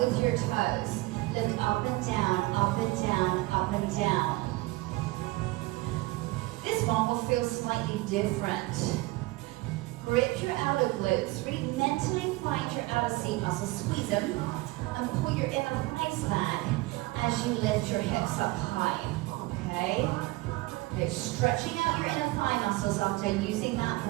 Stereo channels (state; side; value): quieter; left; 21.0 dB